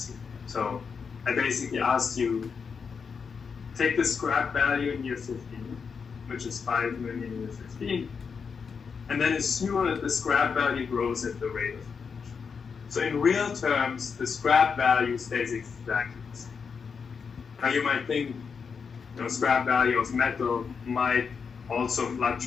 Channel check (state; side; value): quieter; right; 5.9 dB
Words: here. So I basically asked you, take the scrap value in year 15, which is 5 million in year 15, and then assume that the scrap value grows at the rate of inflation. So in real terms, the scrap value stays exactly the same. Now you might think, scrap value of metal might also